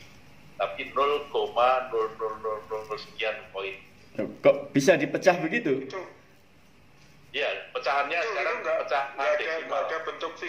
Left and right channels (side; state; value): both; identical; correlation 1.00